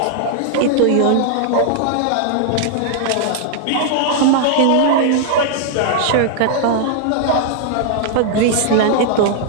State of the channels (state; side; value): different; both; correlation -0.01